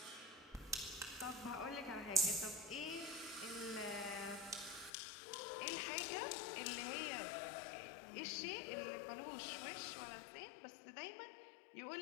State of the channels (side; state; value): right; drops out; at 4.9 s